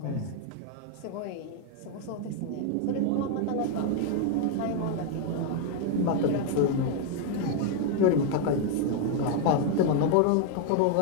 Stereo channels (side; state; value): both; different; correlation 0.00